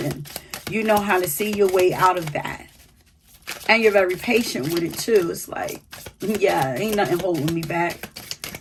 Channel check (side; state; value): both; identical; correlation 1.00